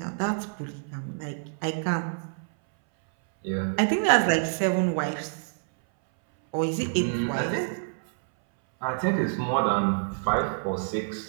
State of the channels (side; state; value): left; silent; 60 dB below the other